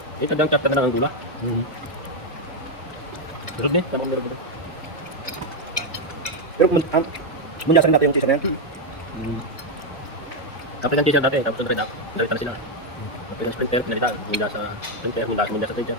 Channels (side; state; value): both; normal; correlation 0.03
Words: Eh, tandang chapter na ang gula. Pero din, tamang meron dito. Pero munyasan natin yung chaser na yan. Kapit ang chaser dati, tapos ang red up. Narita na sila. Kapit ang sprinter, pinalita. Munda sa sprinter, munda sa chaser.